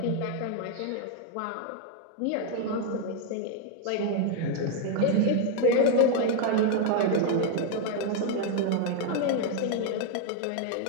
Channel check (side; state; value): both; different; correlation 0.00